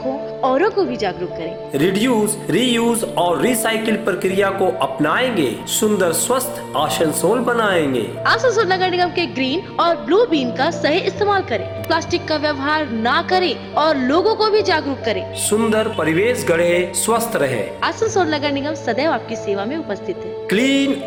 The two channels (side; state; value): both; identical; correlation 1.00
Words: हो, औरों को भी जागरूक करें। रिड्यूस, रीयूज और रिसाइकिल प्रक्रिया को अपनाएंगे, सुंदर स्वस्थ आसनसोल बनाएंगे। आसनसोल नगर निगम के ग्रीन और ब्लू बीन का सही इस्तेमाल करें, प्लास्टिक का व्यवहार ना करें और लोगों को भी जागरूक करें। सुंदर परिवेश गढ़े, स्वस्थ रहे। आसनसोल नगर निगम सदैव आपकी सेवा में उपस्थित है। Clean